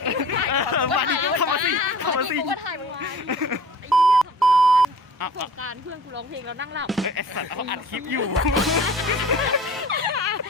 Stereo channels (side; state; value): both; normal; correlation 0.44